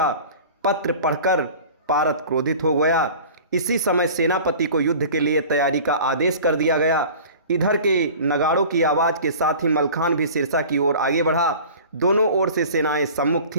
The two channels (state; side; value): inverted; both; correlation -0.41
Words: पत्र पढ़कर पारत क्रोधित हो गया। इसी समय सेनापति को युद्ध के लिए तैयारी का आदेश कर दिया गया। इधर के नगाड़ों की आवाज़ के साथ ही मलखान भी सिरसा की ओर आगे बढ़ा। दोनों ओर से सेनाएं सम्मुख